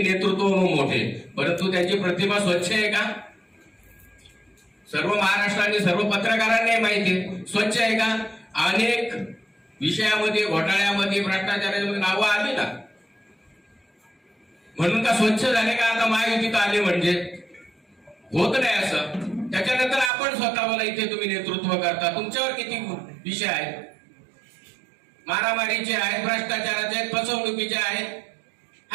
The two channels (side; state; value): left; drops out; at 20.1 s